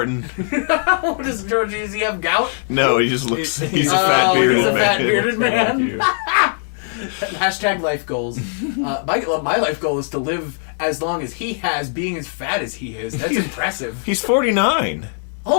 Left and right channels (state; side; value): silent; right; 66 dB below the other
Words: What does George, does he have gout? No, he just looks... He's a a fat he's bearded a old fat man. bearded man. Like you. Hashtag life goals. My life goal is to live as long as he has, being as fat as he is. That's impressive. He's 49.